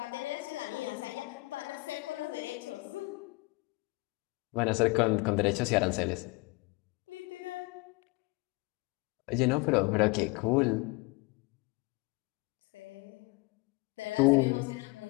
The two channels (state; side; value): quieter; right; 25.9 dB